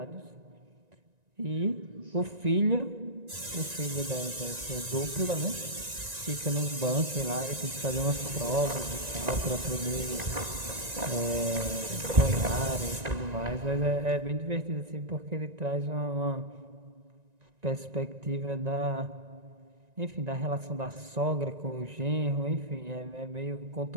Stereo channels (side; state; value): left; late; 1.9 ms